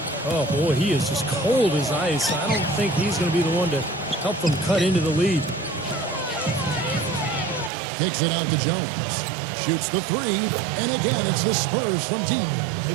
Oh, boy, he is just cold as ice. I don't think he's going to be the one to help them cut into the lead. Kicks it out to Jones. Shoots the three, and again, it's the Spurs from deep.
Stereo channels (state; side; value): drops out; left; at 7.7 s